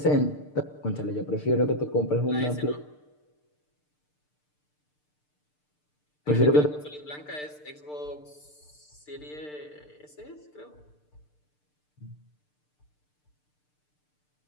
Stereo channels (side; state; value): right; late; 6.7 ms